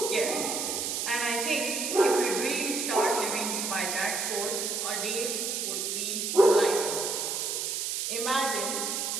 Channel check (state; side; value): noise; right; hiss, 1 dB below the sound